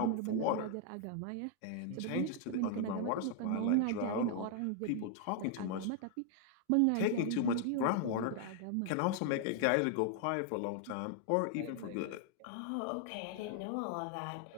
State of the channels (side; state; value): both; different; correlation 0.00